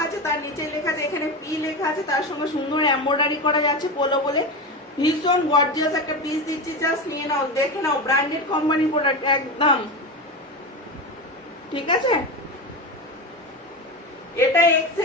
আছে, তার নিচে লেখা আছে, এখানে পি লেখা আছে, তার সঙ্গে সুন্দর এমব্রয়ডারি করা যাচ্ছে পোলো বলে, ভীষণ গর্জিয়াস একটা পিস দিচ্ছি, জাস্ট নিয়ে নাও, দেখে নাও, ব্র্যান্ডেড কোম্পানি প্রোডাক্ট একদম, ঠিক আছে। এটা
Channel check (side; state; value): both; normal; correlation 0.20